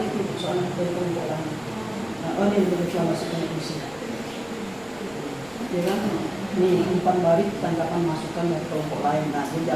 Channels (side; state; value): left; noise; rumble, 24 dB below the sound